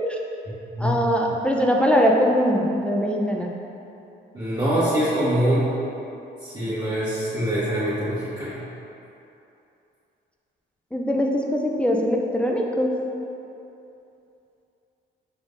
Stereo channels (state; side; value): normal; both; correlation 0.67